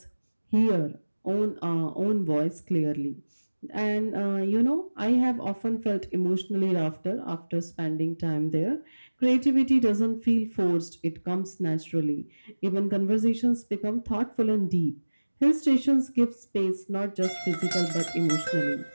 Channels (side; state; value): both; inverted; correlation -1.00